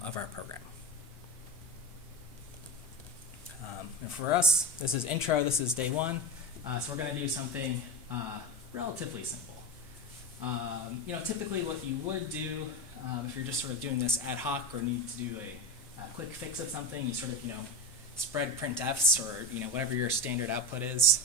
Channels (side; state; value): both; normal; correlation 0.21